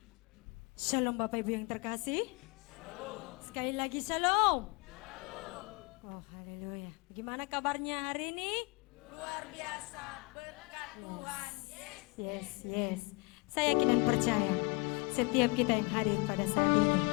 Shalom Bapak Ibu yang terkasih. Sekali lagi shalom. Oh haleluya. Bagaimana kabarnya hari ini? Luar biasa, berkat Tuhan. Yes. Saya yakin dan percaya setiap kita yang hadir pada saat ini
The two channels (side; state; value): right; quieter; 29.6 dB